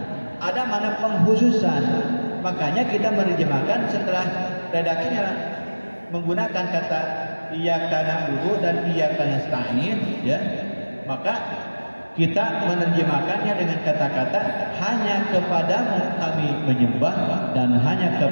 Ada makna pengkhususan. Makanya kita menerjemahkan setelah redaksinya menggunakan kata iyyaka na'budu dan iyyaka nasta'in, ya. Maka kita menerjemahkannya dengan kata-kata hanya kepadamu kami menyembah dan hanya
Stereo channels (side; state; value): both; inverted; correlation -1.00